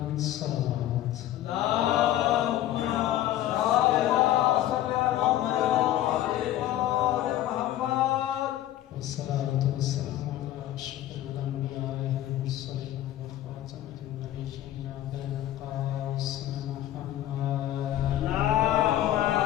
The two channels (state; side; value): quieter; right; 13.3 dB